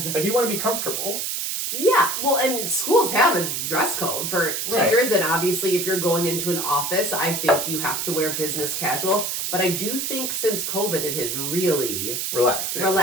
like you want to be comfortable. Yeah, well, and schools have a dress code for teachers, and obviously if you're going into an office, I think you have to wear business casual. But I do think since COVID, it has really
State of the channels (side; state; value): right; noise; hiss, 2 dB below the sound